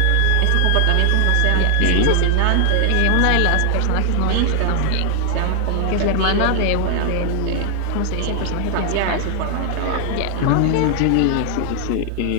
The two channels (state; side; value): different; both; correlation 0.00